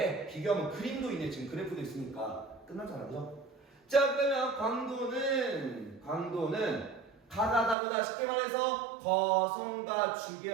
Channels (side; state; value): left; drops out; at 7.8 s